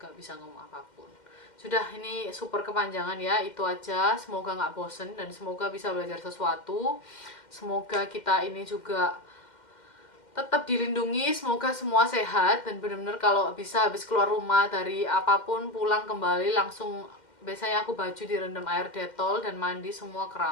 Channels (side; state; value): right; late; 2.1 ms